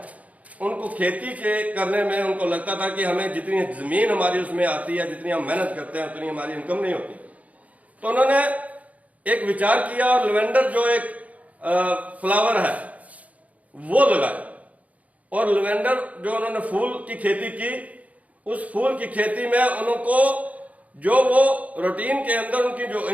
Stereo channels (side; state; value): left; late; 0.070 ms